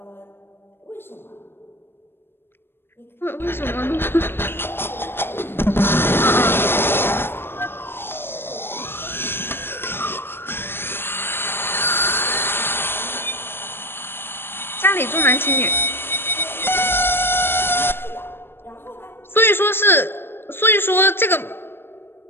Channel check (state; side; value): late; right; 0.11 ms